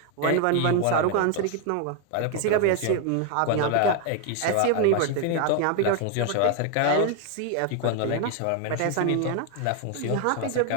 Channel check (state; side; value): different; both; correlation 0.01